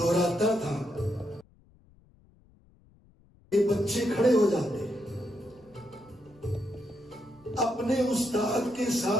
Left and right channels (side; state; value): left; noise; rumble, 29 dB below the sound